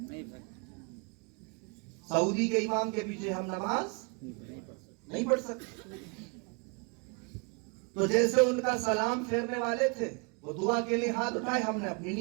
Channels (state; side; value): quieter; left; 33.7 dB